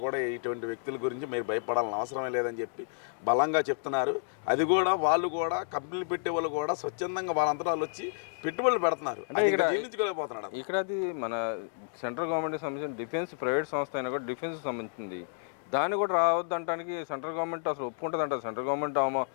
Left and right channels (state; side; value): silent; right; digital silence